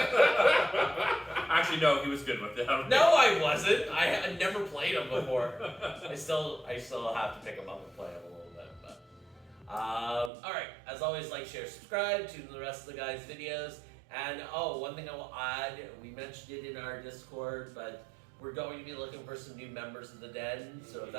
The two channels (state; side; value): drops out; left; at 10.3 s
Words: no, he was good with the Hellraiser. No, I wasn't. I had never played him before. I still have to pick him up and play him a little bit. But all right. As always, like, share, subscribe. Tune in the rest of the guys' videos. And one thing I will add, we mentioned it in our Discord, but we're going to be looking for some new members of the Den. So if